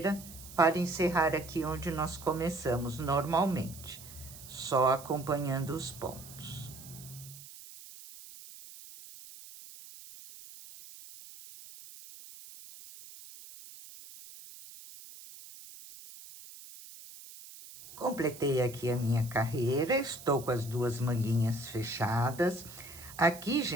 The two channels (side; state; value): right; noise; hiss, 16 dB below the sound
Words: para encerrar aqui onde nós começamos normalmente, só acompanhando os pontos. Completei aqui a minha carreira, estou com as 2 manguinhas fechadas. Aqui,